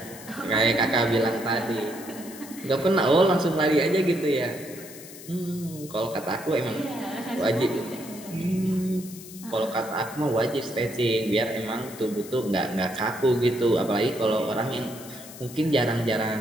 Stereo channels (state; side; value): noise; left; hiss, 16 dB below the sound